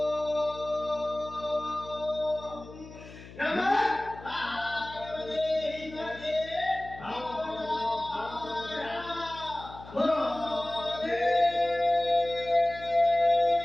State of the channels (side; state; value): left; noise; hum, 17 dB below the sound